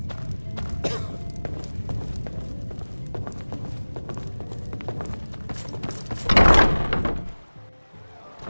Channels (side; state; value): both; inverted; correlation -1.00